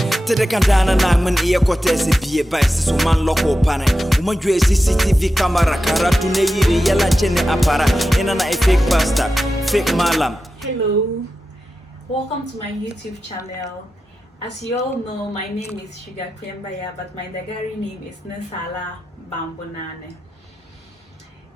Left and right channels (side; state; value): both; normal; correlation 0.91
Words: Tede kandana na man iya kote se bie ba se man loko pane. Uma jwe CCTV camera karatu ne yiri yala chene apara. Ina na fake pastor, fake malam. Hello, welcome to my YouTube channel. As you all know, my name is Sugar Kwembaya, but my Dagari name is Nesala Bambonane.